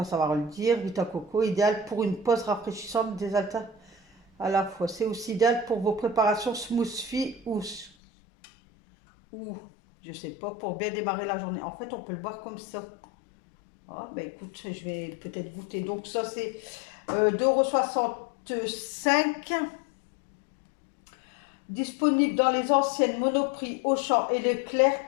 savoir le dire, Vita Coco, idéal pour une pause rafraîchissante, désaltérante à la fois. C'est aussi idéal pour vos préparations smoothie ou je sais pas, pour bien démarrer la journée. En fait, on peut le boire comme ça. Ah, ben écoute, je vais peut-être goûter. Donc ça, c'est 2,65 €. Disponible dans les anciennes Monoprix, Auchan et Leclerc,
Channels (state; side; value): drops out; right; at 7.9 s